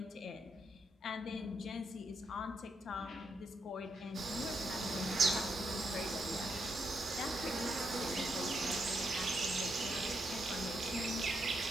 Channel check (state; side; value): normal; both; correlation 0.79